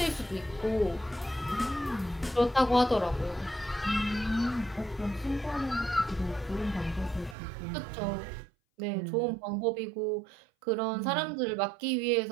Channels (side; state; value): left; drops out; at 7.4 s